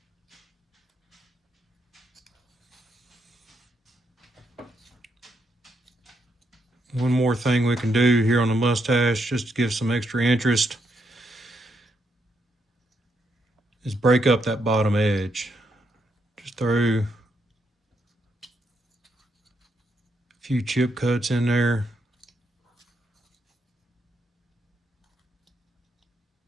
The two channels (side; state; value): both; normal; correlation 0.78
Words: One more thing we can do here on the mustache, just to give some extra interest, is break up that bottom edge. Just throw a few chip cuts in there.